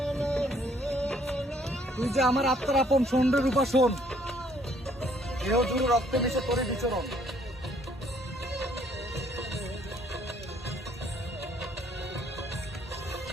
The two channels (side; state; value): both; normal; correlation 0.64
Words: তুই যে আমার আত্মার আপন, শোন রে রূপা শোন, দেহ জুড়ে রক্তে মিশে তোরে বিচরণ।